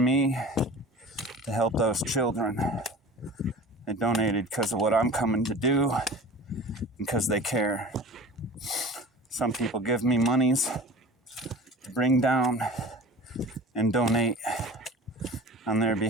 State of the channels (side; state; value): both; normal; correlation 0.39